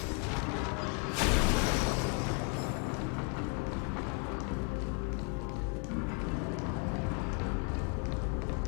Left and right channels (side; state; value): right; quieter; 34.3 dB